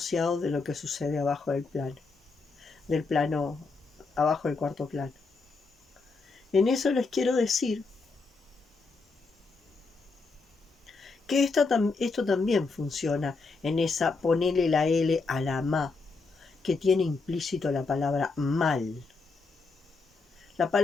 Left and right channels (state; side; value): quieter; right; 4.1 dB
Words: de lo que sucede abajo del plano, abajo del cuarto plano. En eso les quiero decir que esto también funciona en esa ponele la L a la ma, que tiene implícito la palabra mal. La